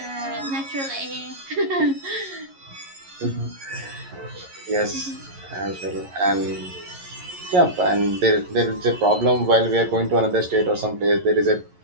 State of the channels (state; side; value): late; left; 11 ms